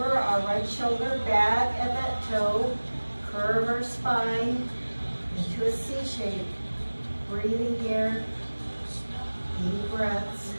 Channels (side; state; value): both; inverted; correlation -1.00